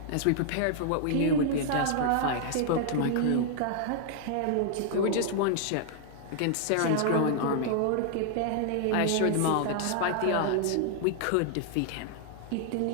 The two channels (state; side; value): different; both; correlation 0.00